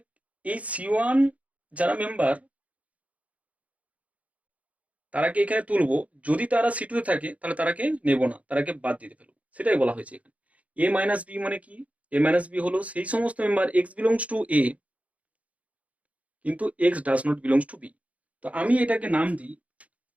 এই C1 যারা মেম্বার তারাকে এখানে তুলবো, যদি তারা C2 তে থাকে তাহলে তারাকে নেব না, তারাকে বাদ দিতে ফেলবো, সেটাই বলা হয়েছে এখানে। A - B মানে কি? A - B হলো সেই সমস্ত member x belongs to A কিন্তু x does not belongs two B। তো আমি এটাকে নাম দিই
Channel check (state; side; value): late; left; 0.067 ms